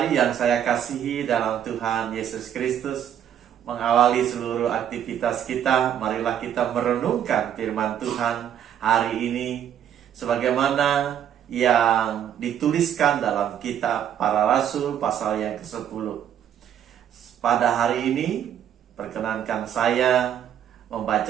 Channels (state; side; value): quieter; left; 9.8 dB